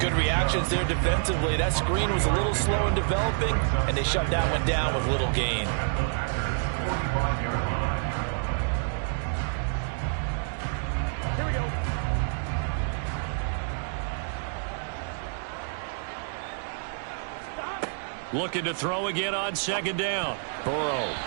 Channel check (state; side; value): silent; left; digital silence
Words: Good reactions there defensively. That screen was a little slow in developing, and they shut that one down with little gain. Here we go. Looking to throw again on second down. Burrow.